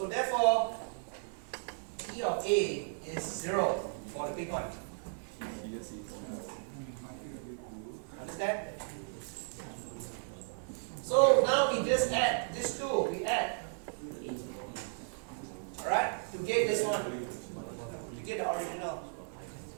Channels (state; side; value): silent; left; 54 dB below the other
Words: therefore, E of A is 0 for the big one. Understand? So now we just add these two. We add. Alright? To get this one. To get the original.